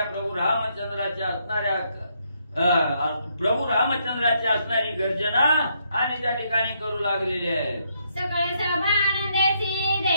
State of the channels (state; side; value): inverted; both; correlation -0.75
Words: प्रभू रामचंद्राच्या असणारी गर्जना आणि त्या ठिकाणी करू लागलेली आहे. सकळ सभा आनंदाची